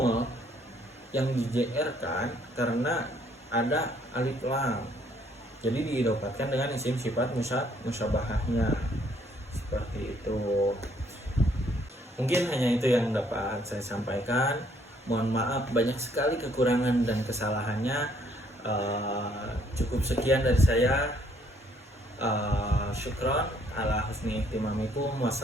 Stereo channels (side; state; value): both; normal; correlation 0.66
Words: yang dijerkan karena ada alif lam. Jadi diidopatkan dengan isim sifat musyabahahnya. Seperti itu. Mungkin hanya itu yang dapat saya sampaikan. Mohon maaf banyak sekali kekurangan dan kesalahannya. Cukup sekian dari saya. Syukron ala husni ihtimamikum.